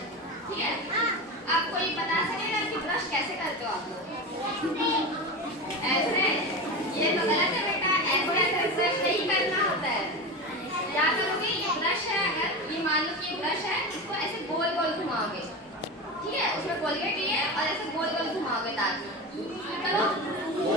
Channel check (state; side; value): normal; both; correlation 0.23